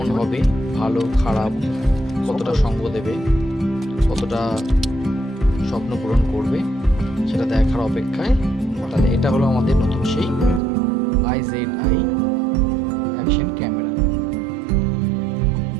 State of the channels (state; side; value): drops out; left; at 10.6 s